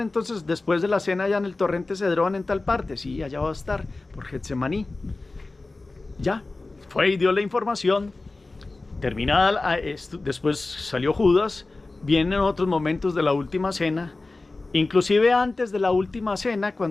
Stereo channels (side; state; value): right; quieter; 3.3 dB